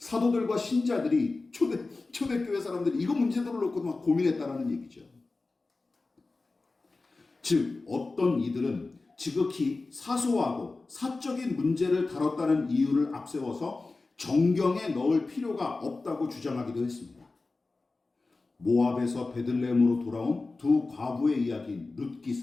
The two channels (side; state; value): right; quieter; 3.6 dB